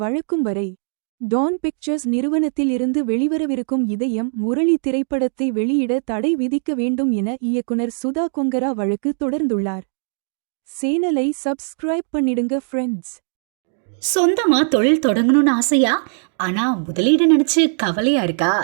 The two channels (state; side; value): silent; left; digital silence